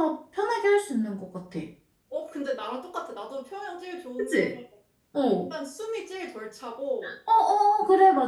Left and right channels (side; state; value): both; identical; correlation 1.00